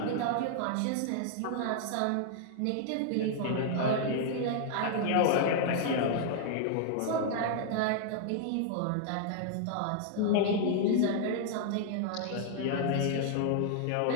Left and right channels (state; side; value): different; both; correlation -0.01